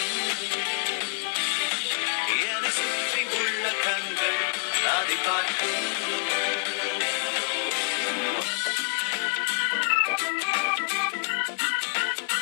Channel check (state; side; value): quieter; right; 38.4 dB